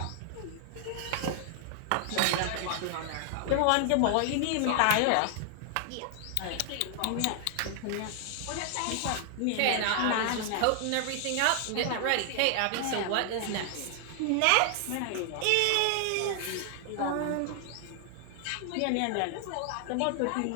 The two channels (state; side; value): different; both; correlation 0.00